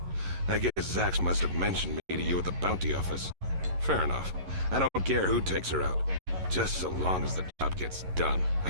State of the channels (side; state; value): left; late; 11 ms